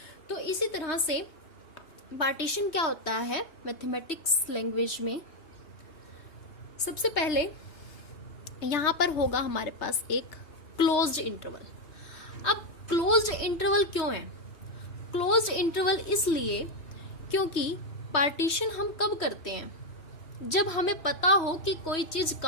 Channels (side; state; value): right; late; 3.1 ms